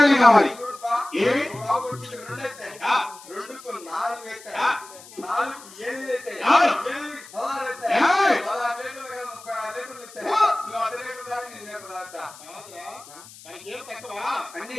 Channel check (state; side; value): noise; left; hiss, 19 dB below the sound